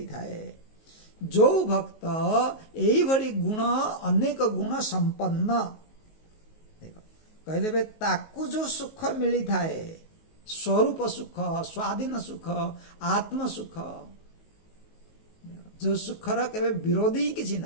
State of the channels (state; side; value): late; right; 19 ms